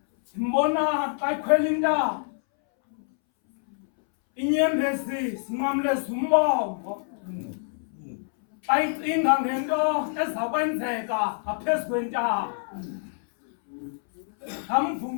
Simbona xa ikhwela intaba inyembezi sinqamleza umbongo xa icinga ngento ezakwenzeka ngaphezu kwentaba. Amva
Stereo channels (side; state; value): right; silent; 61 dB below the other